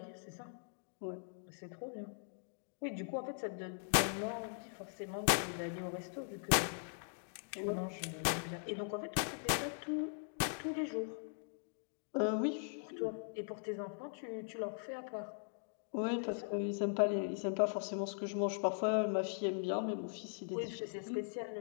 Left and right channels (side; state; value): right; silent; digital silence